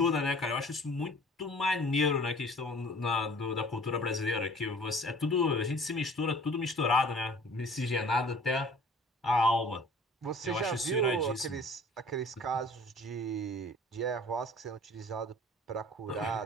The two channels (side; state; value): both; normal; correlation 0.49